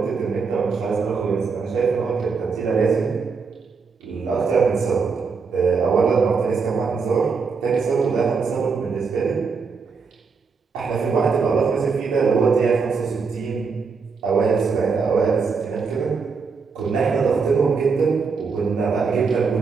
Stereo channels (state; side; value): quieter; left; 5.1 dB